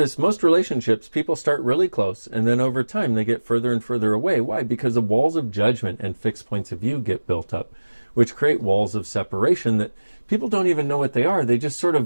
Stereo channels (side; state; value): both; inverted; correlation -1.00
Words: most relationships, people start really close, and then over time they get further and further away. Why? Because the walls of judgment and fixed points of view get built up, which create walls of separation that people don't even know what they are. They just sort